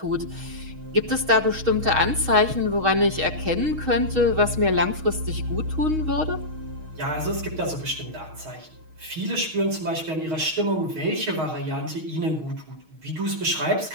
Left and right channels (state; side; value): late; left; 6.4 ms